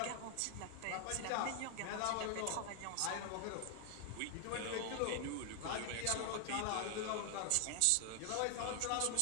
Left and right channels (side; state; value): both; different; correlation 0.00